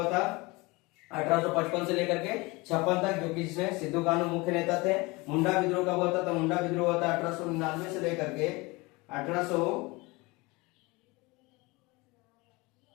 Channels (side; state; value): right; quieter; 24.4 dB